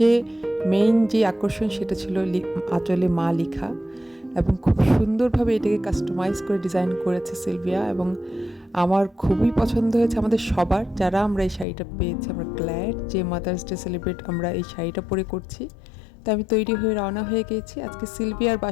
মেইন যে আকর্ষণ সেটা ছিল আঁচলে মা লেখা, এবং খুব সুন্দরভাবে এটাকে কাস্টমাইজ করে ডিজাইন করেছে সিলভিয়া, এবং আমার খুবই পছন্দ হয়েছে। আমাদের সবার, যারা আমরা এই শাড়িটা পেয়েছি, আমরা গ্ল্যাড যে মাদার্স ডে সেলিব্রেট আমরা এই শাড়িটা পরে করছি। তো আমি তৈরি হয়ে রওনা হয়ে গিয়েছি। আজকে সিলভিয়ার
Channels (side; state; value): right; drops out; at 11.7 s